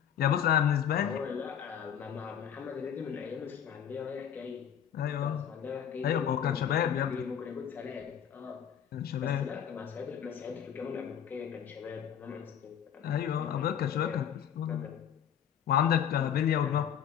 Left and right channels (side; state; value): right; quieter; 8.9 dB